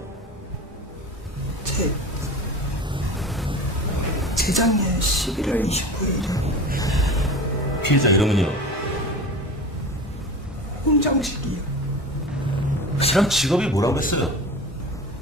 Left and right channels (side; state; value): both; normal; correlation 0.33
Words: 재작년 11월 29일 피해자 이름은요? 홍정식이요. 실은 직업이 뭐라고 했어요?